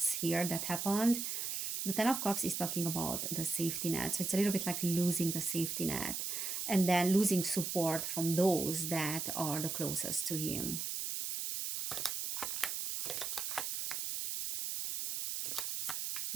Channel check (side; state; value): right; noise; hiss, 2 dB below the sound